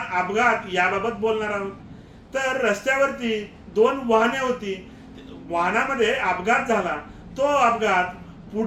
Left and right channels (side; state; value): both; identical; correlation 1.00